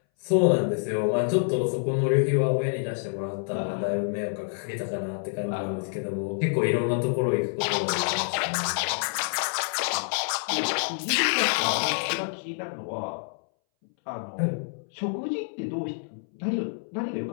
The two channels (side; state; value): right; silent; 60 dB below the other